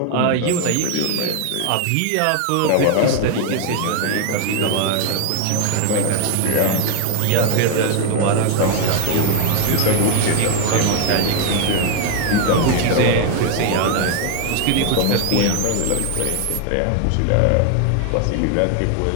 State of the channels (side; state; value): both; different; correlation 0.01